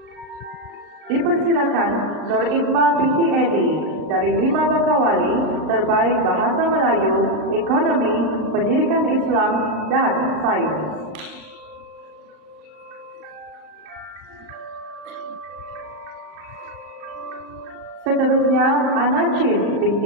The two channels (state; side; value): late; left; 38 ms